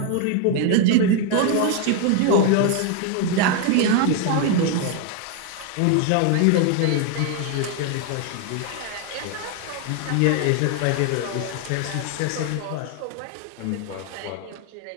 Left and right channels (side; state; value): both; different; correlation 0.01